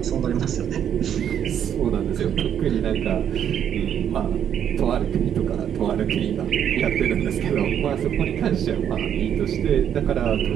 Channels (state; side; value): quieter; left; 9.2 dB